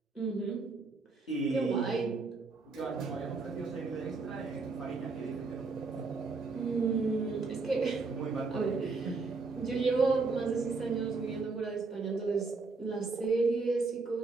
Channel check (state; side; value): quieter; left; 4.0 dB